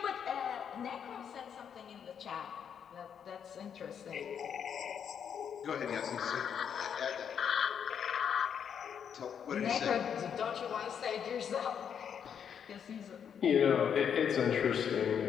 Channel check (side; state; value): right; quieter; 7.9 dB